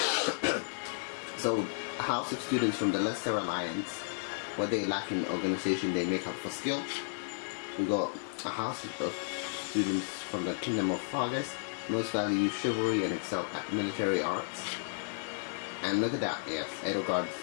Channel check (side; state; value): right; silent; digital silence